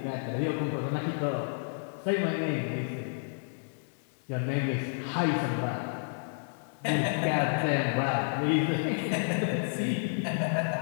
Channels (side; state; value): right; silent; digital silence